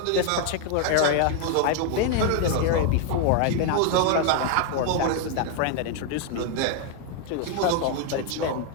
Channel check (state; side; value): different; both; correlation 0.01